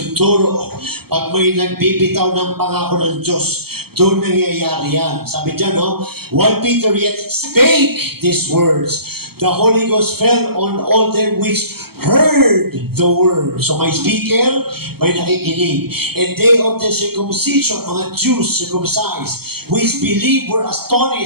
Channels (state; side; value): late; left; 0.96 ms